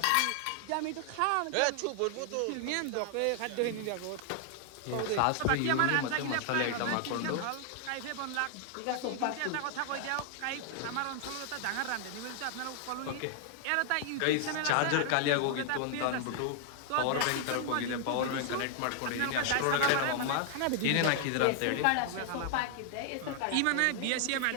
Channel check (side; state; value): both; different; correlation 0.00